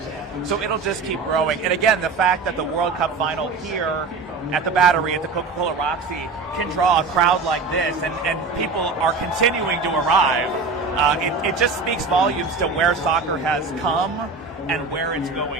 so it'll just keep growing. And again, the fact that the World Cup final here at the Battery, at the Coca-Cola Roxy, can draw a crowd like this, and people are continuing to arrive, it just speaks volumes to where soccer has come and where it's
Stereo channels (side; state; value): left; quieter; 4.2 dB